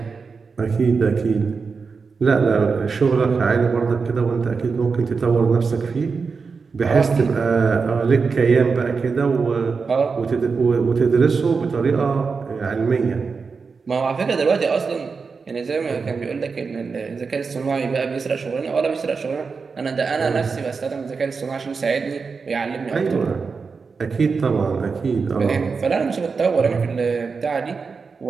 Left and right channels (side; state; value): left; quieter; 5.0 dB